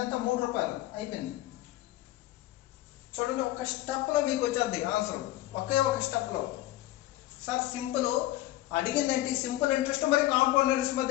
అంత 3 రూపాయలు అయిపోయింది. చూడండి ఒక స్టెప్లో మీకు వచ్చేది ఆన్సర్, ఒకే ఒక స్టెప్లో. సార్ సింపుల్ అడిగిందేంటి, సింపుల్ ఇంట్రెస్ట్ మరి కాంపౌండ్ ఇంట్రెస్ట్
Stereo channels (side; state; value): right; quieter; 15.8 dB